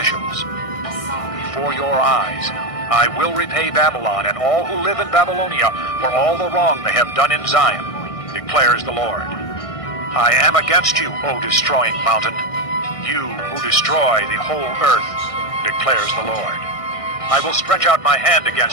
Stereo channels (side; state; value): right; late; 1.6 ms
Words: Before your eyes, I will repay Babylon and all who live in Babylonia for all the wrong they have done in Zion, declares the Lord. I am against you, O destroying mountain, you who destroy the whole earth, declares the Lord. I will stretch out my hand